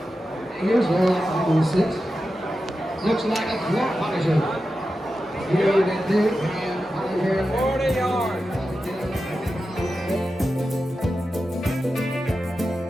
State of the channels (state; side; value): normal; both; correlation 0.91